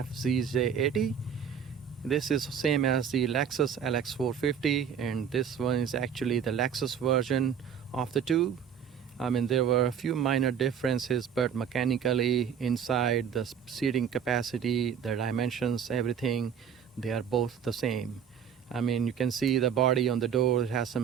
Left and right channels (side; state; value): left; quieter; 7.9 dB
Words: This is same as the Lexus LX450, and this one is actually the Lexus version of the two. There were a few minor differences, but mechanically, inside, the seating capacity, the dimensions, everything, they are both the same. You can see the body on the door, it has